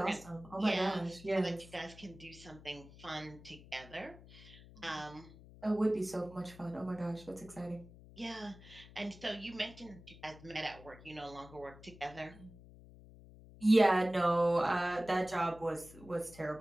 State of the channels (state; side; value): noise; left; hum, 19 dB below the sound